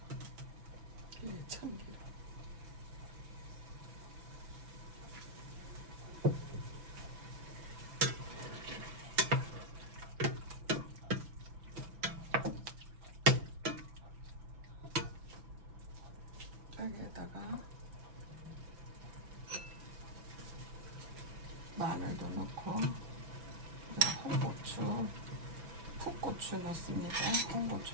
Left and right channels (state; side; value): late; left; 6.0 ms